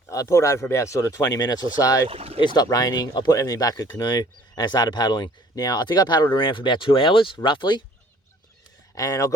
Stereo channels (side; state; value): both; normal; correlation 0.55